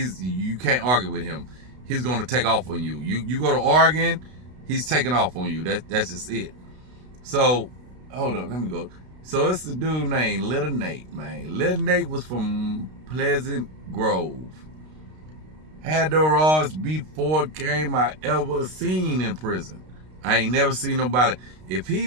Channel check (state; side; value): late; left; 32 ms